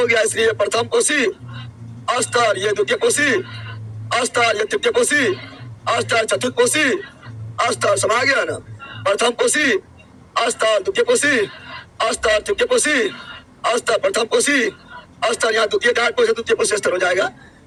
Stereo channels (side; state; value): both; identical; correlation 1.00